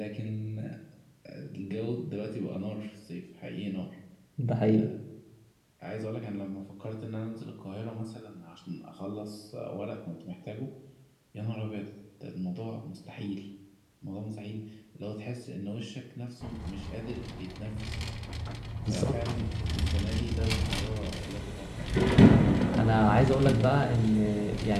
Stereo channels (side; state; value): both; identical; correlation 1.00